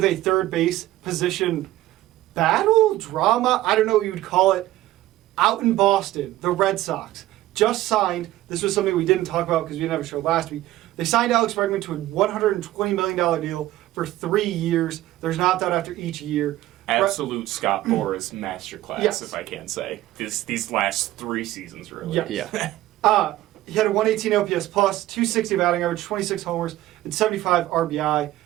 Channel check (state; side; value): quieter; left; 15.6 dB